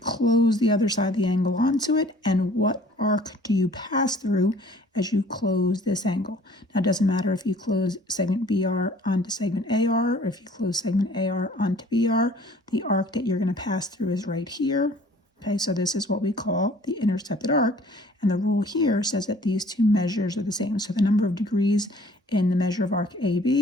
close the other side of the angle onto it. And what arc do you pass through as you close this angle? Now, it doesn't matter if you close segment BR onto segment AR or if you close segment AR onto BR. The arc that you're going to pass through is right here. Okay, so this is what we call the intercepted arc. And the rule here says that these 2 measures are the same. So the number of degrees in the measure of arc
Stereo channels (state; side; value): normal; both; correlation 0.53